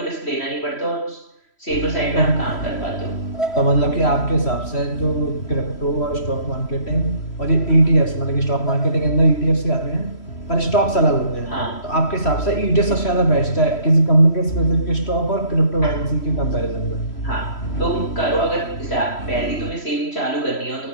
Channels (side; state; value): right; late; 3.1 ms